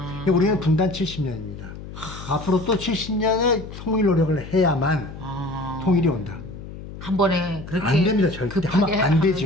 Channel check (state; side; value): noise; left; hum, 12 dB below the sound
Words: 우리는 분단 70년입니다. 앞으로 또 70년의 통일 노력을 해야만 통일이 온다. 한 번에 그렇게 안 됩니다. 절대 하면 안